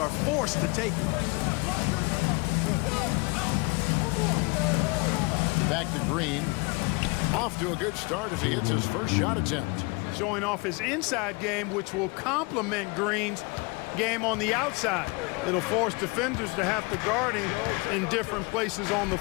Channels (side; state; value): right; quieter; 28.1 dB